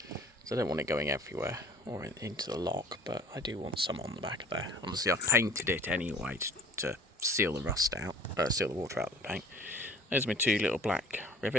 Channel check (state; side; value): normal; both; correlation 0.49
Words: So I don't want it going everywhere or into the lock, but I do want some on the back of there. Obviously I've painted it anyway to seal the rust out, seal the water out of the paint. There's my 2 little black